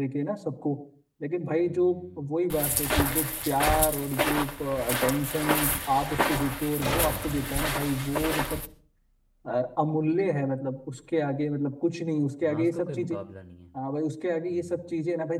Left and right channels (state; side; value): identical; both; correlation 1.00